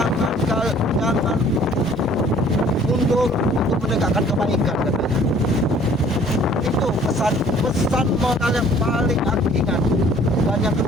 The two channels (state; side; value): normal; both; correlation 0.55